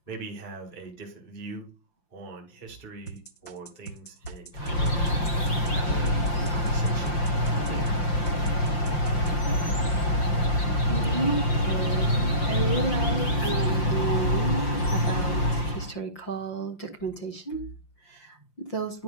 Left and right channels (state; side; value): late; right; 5.7 ms